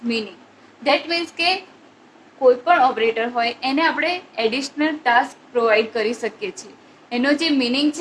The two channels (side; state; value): both; identical; correlation 1.00